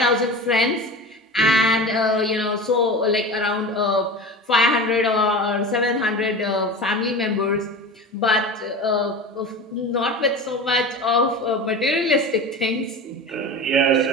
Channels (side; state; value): both; normal; correlation 0.31